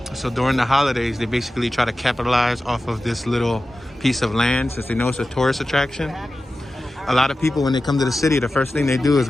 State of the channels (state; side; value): normal; both; correlation 0.94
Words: So during the holidays, they basically try to capitalize off of this little piece of land since they know it's a tourist attraction. A lot of people, when they come to the city, the first thing they do is